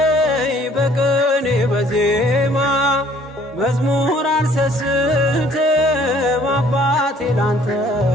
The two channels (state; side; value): normal; both; correlation 0.58